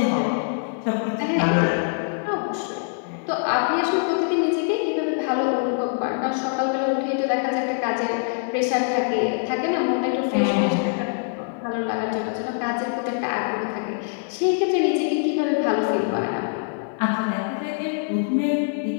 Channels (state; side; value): silent; right; 63 dB below the other